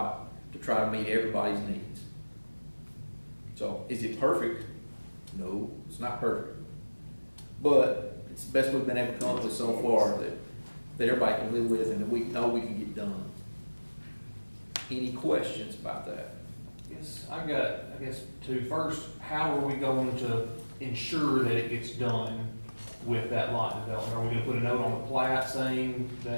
to try to meet everybody's needs. So, is it perfect? No, it's not perfect. But it's the best we've been able to come up with so far that everybody can live with, and that we know we can get done. Any questions about that? Yes, I guess two. First, how are we going to ensure that it gets done with that lot development? Are we gonna put a note on the plat saying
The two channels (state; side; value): inverted; both; correlation -1.00